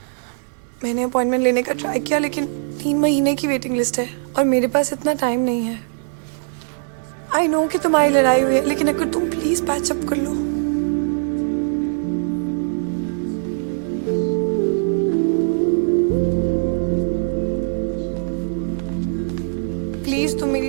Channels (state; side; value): silent; left; digital silence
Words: मैंने अपॉइंटमेंट लेने का ट्राई किया लेकिन 3 महीने की वेटिंग लिस्ट है और मेरे पास इतना टाइम नहीं है। आई नो कि तुम्हारी लड़ाई हुई है लेकिन अगर तुम प्लीज पैच अप कर लो। प्लीज तुम